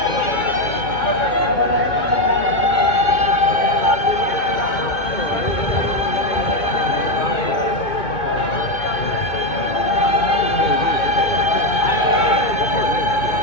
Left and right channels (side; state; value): right; late; 2.2 ms